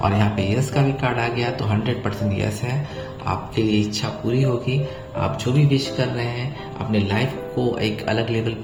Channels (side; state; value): both; identical; correlation 1.00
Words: और यहाँ पे यस का भी कार्ड आ गया तो 100% यस है, आपके लिए इच्छा पूरी होगी। आप जो भी विश कर रहे हैं अपने लाइफ को एक अलग लेवल